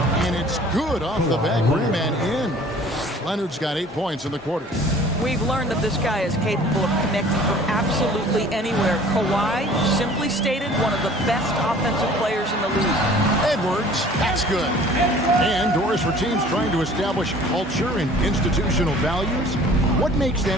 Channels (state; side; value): normal; both; correlation 0.49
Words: And it's good off the back rim and in. Leonard's got 8 points in the quarter. We've learned that this guy is capable of connecting from absolutely anywhere. Kawhi, simply stated, one of the best offensive players in the league. Edwards, that's good. And Doris, for teams trying to establish culture and institutional values, what makes that